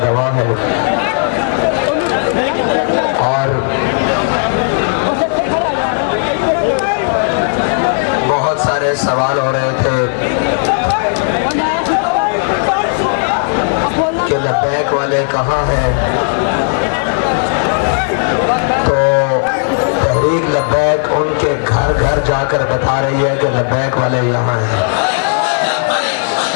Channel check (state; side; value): silent; right; 71 dB below the other